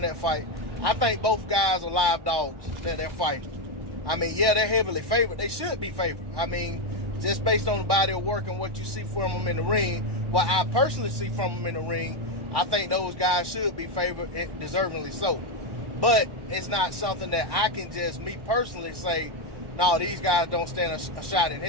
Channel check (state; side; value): late; left; 1.1 ms